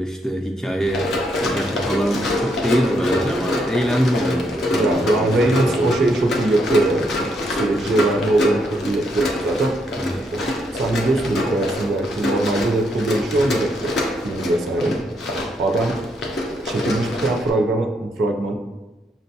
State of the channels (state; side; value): normal; both; correlation 0.76